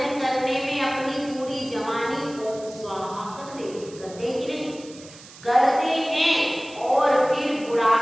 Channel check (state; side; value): noise; right; hiss, 19 dB below the sound